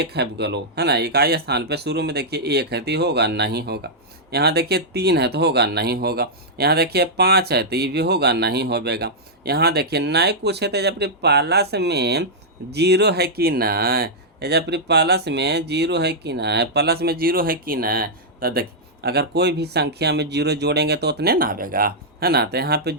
है बोलो, है ना, इकाई स्थान पे शुरू में देखिए 1 है तो ये होगा नहीं होगा, यहाँ देखिए 3 है तो होगा नहीं होगा, यहाँ देखिए 5 है तो ये भी होगा नहीं होगा, यहाँ देखिए नहीं कुछ है तो जब प्लस में 0 है कि नहीं, जब प्लस में 0 है कि नहीं, प्लस में 0 है कि नहीं, तो देखिए अगर कोई भी संख्या में 0 जोड़ेंगे तो उतने ना आवेगा, है ना, तो यहाँ पे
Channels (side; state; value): both; normal; correlation -0.08